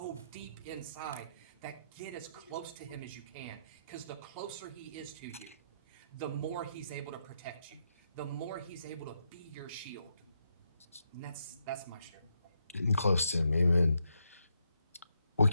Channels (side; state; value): both; inverted; correlation -0.80